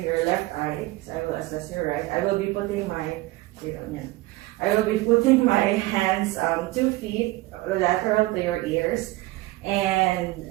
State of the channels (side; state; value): left; quieter; 19.0 dB